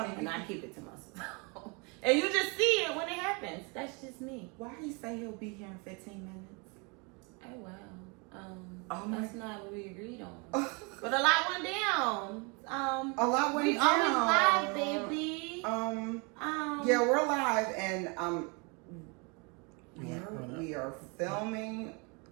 And I keep it to myself. And you just see it when it happens. That's just me. Why do you say he'll be here in 15 minutes? Oh, wow. That's not what we agreed on. But a lot went down. A lot went down. We always live, baby. Yeah, we're live and we are filming.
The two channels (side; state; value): left; quieter; 31.6 dB